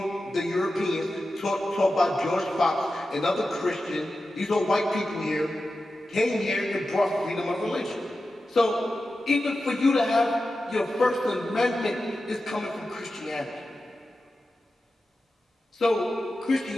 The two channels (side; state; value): both; normal; correlation 0.92